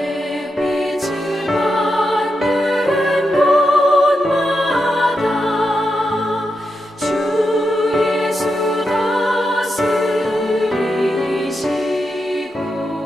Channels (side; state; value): both; normal; correlation 0.86